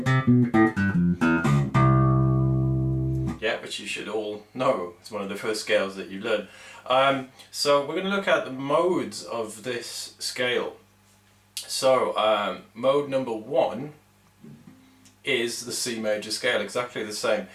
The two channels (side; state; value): both; identical; correlation 1.00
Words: Yeah, which you should all know. It's one of the first scales that you learn. So we're going to look at the modes of this scale. So mode number 1 is the C major scale, exactly the same,